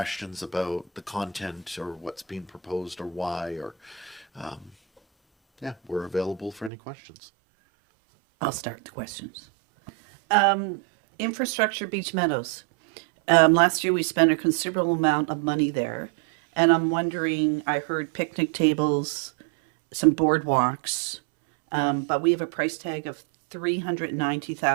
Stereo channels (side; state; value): left; drops out; at 6.7 s